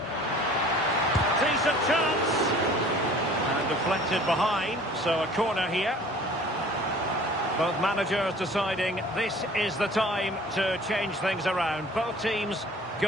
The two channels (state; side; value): normal; both; correlation 0.48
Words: Decent chance. And deflected behind, so a corner here. Both managers deciding this is the time to change things around. Both teams